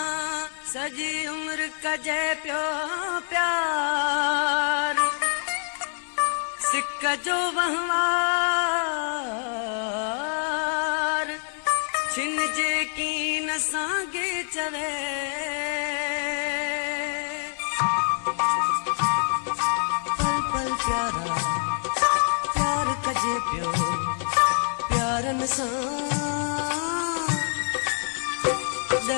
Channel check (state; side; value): silent; right; digital silence